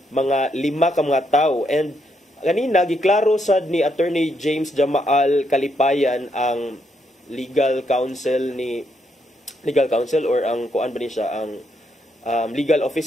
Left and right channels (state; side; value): normal; both; correlation 0.77